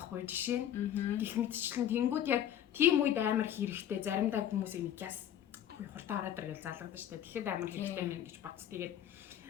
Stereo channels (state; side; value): quieter; right; 10.7 dB